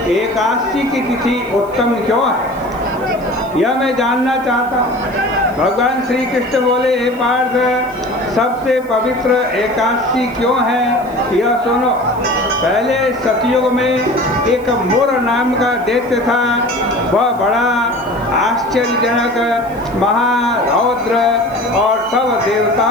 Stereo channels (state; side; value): noise; left; hiss, 27 dB below the sound